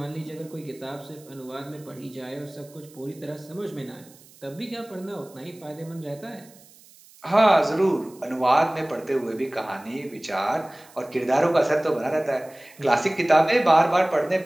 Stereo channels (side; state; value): right; noise; hiss, 25 dB below the sound